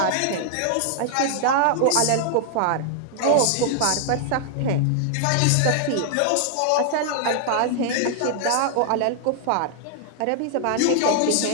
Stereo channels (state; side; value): different; both; correlation 0.00